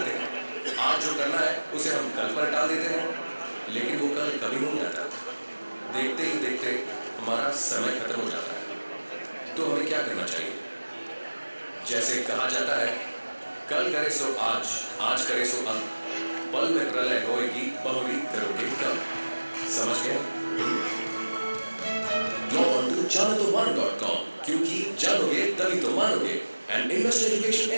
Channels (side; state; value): both; inverted; correlation -1.00